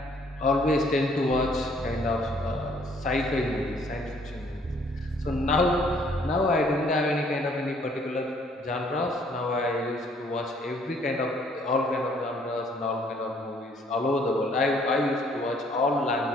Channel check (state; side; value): normal; both; correlation 0.63